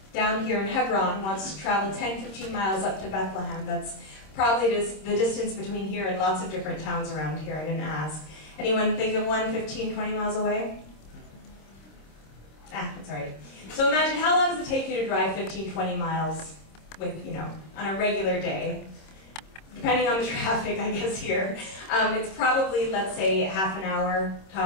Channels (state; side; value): late; right; 26 ms